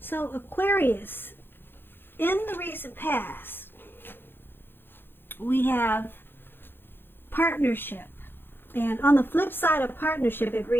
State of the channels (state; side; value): late; right; 0.10 ms